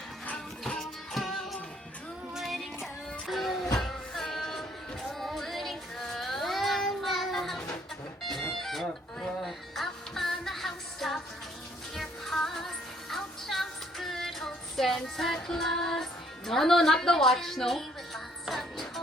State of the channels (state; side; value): normal; both; correlation 0.65